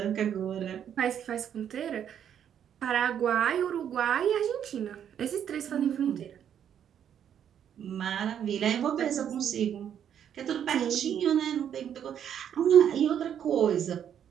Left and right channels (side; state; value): left; quieter; 9.2 dB